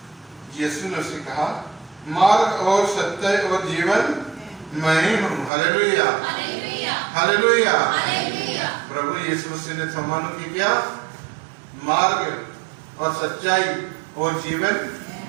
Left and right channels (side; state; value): left; drops out; at 5.5 s